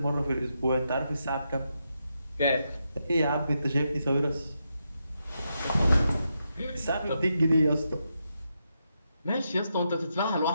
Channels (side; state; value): both; inverted; correlation -0.84